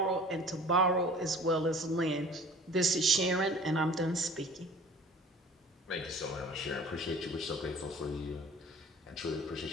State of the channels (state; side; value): normal; both; correlation 0.46